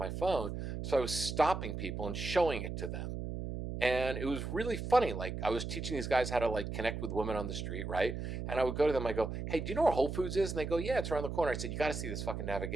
phone, so I was stopping people and showing it to them. And it was really funny. Like, I was teaching these guys how to like connect with women on the street, right? And I would go to them, I go, "Hey, do you know where Whole Foods is?" And they go, "Yeah, it's around the corner." I said, "You got to see this fucking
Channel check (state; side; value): noise; right; hum, 5 dB below the sound